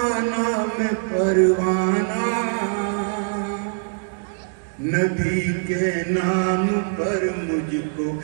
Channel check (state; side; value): silent; left; digital silence